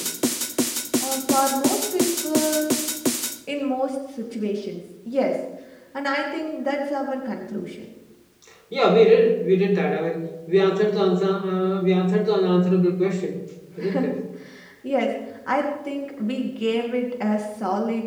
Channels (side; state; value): both; identical; correlation 1.00